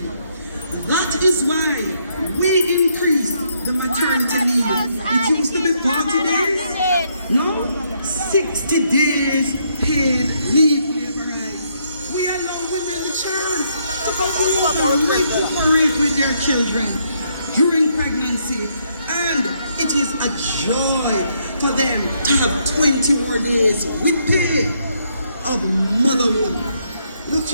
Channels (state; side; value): inverted; both; correlation -0.73